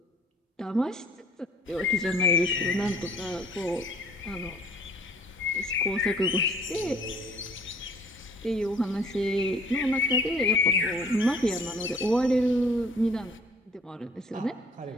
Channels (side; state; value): both; normal; correlation 0.54